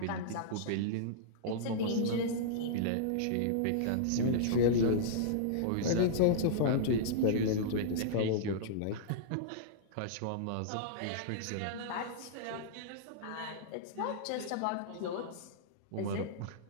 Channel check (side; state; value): both; different; correlation -0.03